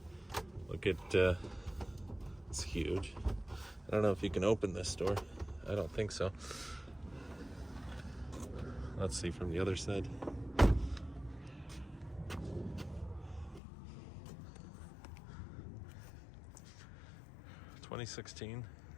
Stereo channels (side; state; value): right; drops out; at 13.6 s